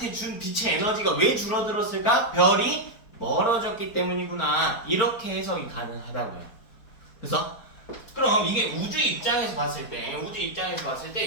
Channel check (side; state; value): right; late; 4.4 ms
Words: 준 빛의 에너지가 왜 줄어들었을까? 별이 멀어졌기 때문이구나, 이렇게 해석이 가능하다고요. 그래서 그럼 그럼 이게 우주 입장에서 봤을